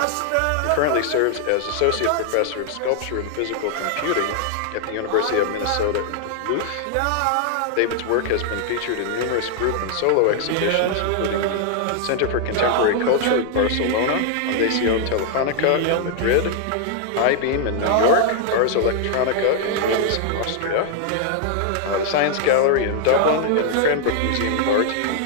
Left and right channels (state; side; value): different; both; correlation 0.00